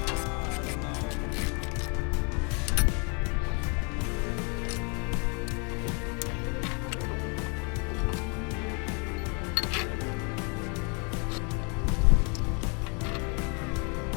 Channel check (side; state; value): right; quieter; 35.3 dB